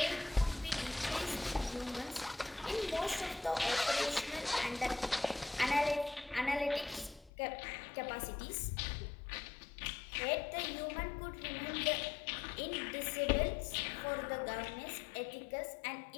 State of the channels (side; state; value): right; drops out; at 7.3 s